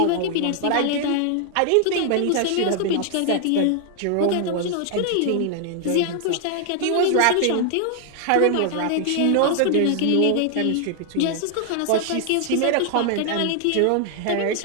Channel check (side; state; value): both; different; correlation 0.00